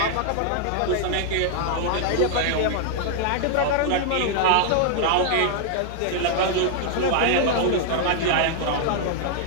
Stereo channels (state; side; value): different; both; correlation 0.00